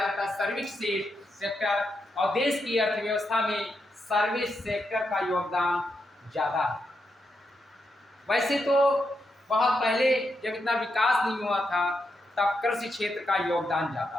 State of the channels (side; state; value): both; normal; correlation 0.83